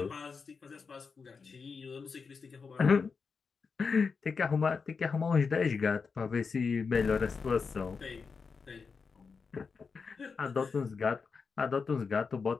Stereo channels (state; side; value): quieter; right; 5.2 dB